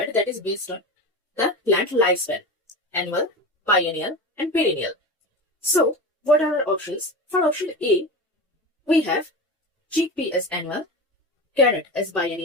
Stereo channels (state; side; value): normal; both; correlation 0.27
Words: that is based on the plant lifespan, annual, biennial and perennial. So what are our options? For option A, we have chickpea as annual, carrot as